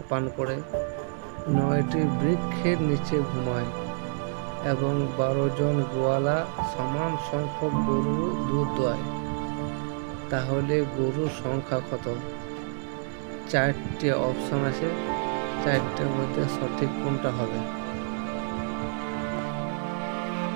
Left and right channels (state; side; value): silent; left; 59 dB below the other